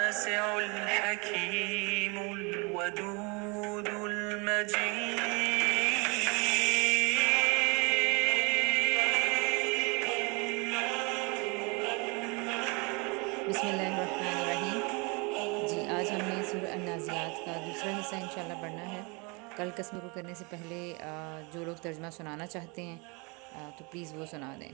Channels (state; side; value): quieter; left; 30.2 dB